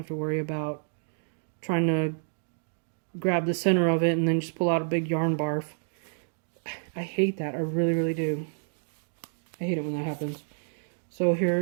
to worry about trying to grab the center of it and then just pull out a big yarn barf. I hate that. I really, really do. I hate it when that happens. So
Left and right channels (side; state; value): left; silent; digital silence